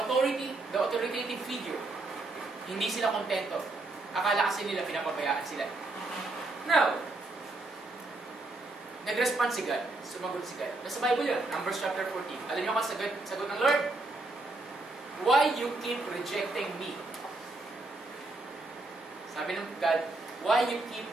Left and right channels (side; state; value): left; quieter; 3.0 dB